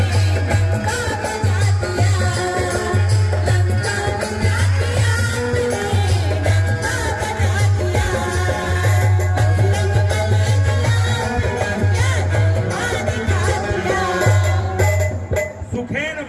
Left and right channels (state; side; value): identical; both; correlation 1.00